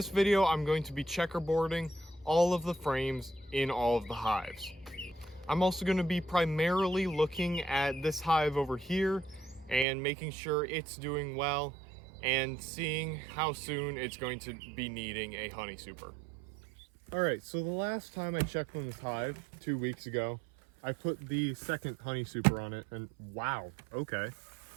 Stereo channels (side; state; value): left; drops out; at 9.9 s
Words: video, I'm going to be checkerboarding all of the frames in all of the hives. I'm also going to be primarily looking at this hive over here and making sure it's doing well and seeing how soon it's going to be needing a honey super. Alright, so the last time I checked on this hive, 2 weeks ago, I put the second honey super on it and wow, okay.